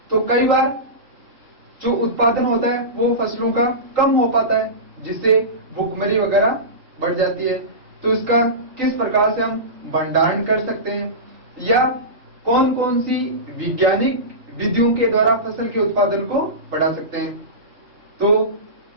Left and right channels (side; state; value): left; late; 4.0 ms